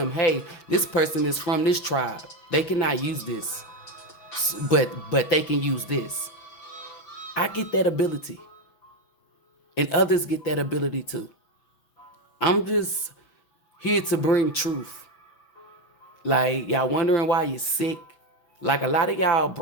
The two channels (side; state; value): right; late; 6.2 ms